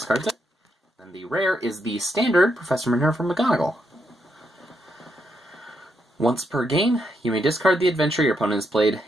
it. Then the rare is the standard Professor Minerva McGonagall. Once per game, you may discard the adventure your opponent has played.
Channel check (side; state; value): both; normal; correlation 0.79